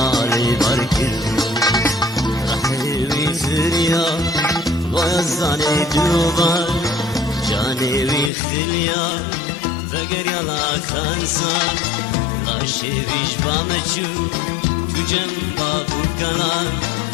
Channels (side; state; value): right; drops out; at 8.3 s